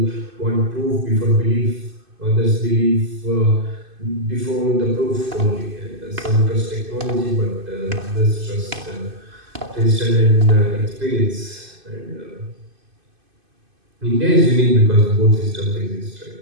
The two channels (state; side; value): late; left; 2.5 ms